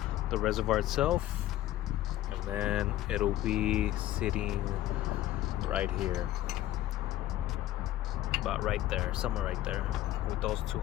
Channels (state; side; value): quieter; right; 14.1 dB